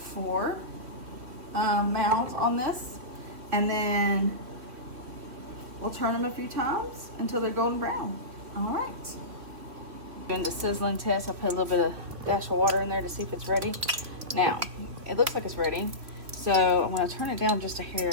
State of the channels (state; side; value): late; left; 3.1 ms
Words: mounds on this, and then we'll turn them a few times until they're golden brown. All right. Doing the sizzling test, I put a little bit of dash of water in there to see if it's ready. Now, it looks like it's ready. So I'm gonna turn it down just a hair